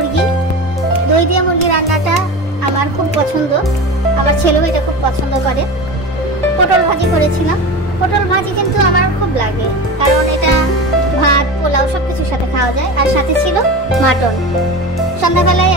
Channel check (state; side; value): normal; both; correlation 0.29